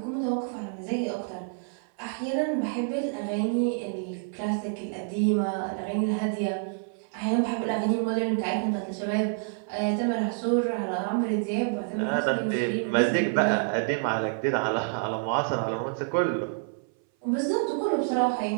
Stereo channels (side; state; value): left; silent; 58 dB below the other